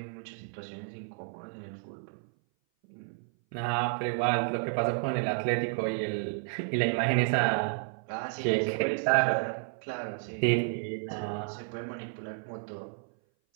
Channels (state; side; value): silent; left; 57 dB below the other